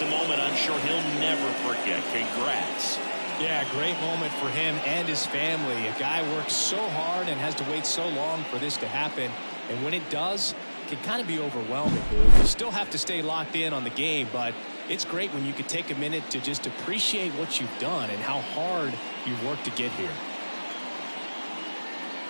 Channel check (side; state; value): both; inverted; correlation -1.00